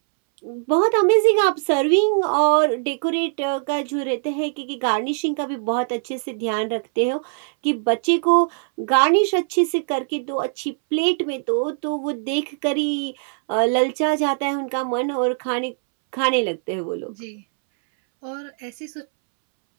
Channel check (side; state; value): left; silent; 64 dB below the other